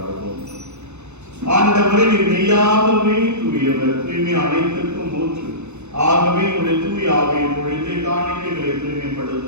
ஆண்டவரே, நீர் மெய்யாகவே தூயவர், தூய்மை அனைத்திற்கும் ஊற்று. ஆகவே உடைய தூய ஆவியை பொழிந்து காணிக்கைகளை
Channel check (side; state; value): left; late; 0.82 ms